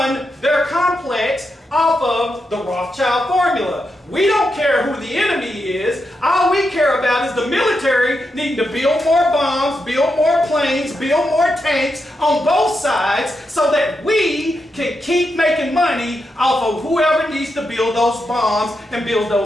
their complex off of the Rothschild formula. We don't care who the enemy is. All we care about is the military needing to build more bombs, build more planes, build more tanks on both sides so that we can keep making money off of whoever needs to build those bombs and build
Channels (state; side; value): normal; both; correlation 0.85